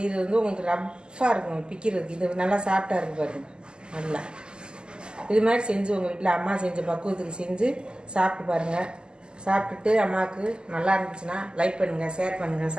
வந்து உங்களுக்கு ரஃப்பாக இருக்கும் பிக்கிறதுக்கு. இது நல்லா சாஃப்டாக இருக்குது பாருங்கள். நல்லா இது மாதிரி செஞ்சு உங்கள் வீட்டில் அம்மா செஞ்ச பக்குவத்துக்கு செஞ்சு சாப்பிட்டு பாருங்கள். சாப்பிட்டுட்டு அம்மாவுக்கு நல்லா இருந்துச்சுன்னா லைக் பண்ணுங்கள், ஷேர் பண்ணுங்கள்,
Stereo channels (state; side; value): late; left; 0.047 ms